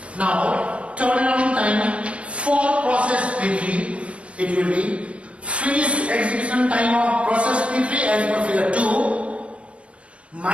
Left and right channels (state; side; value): late; left; 0.061 ms